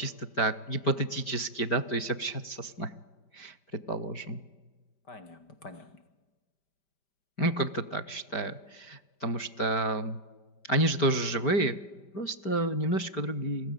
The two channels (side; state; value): right; late; 5.1 ms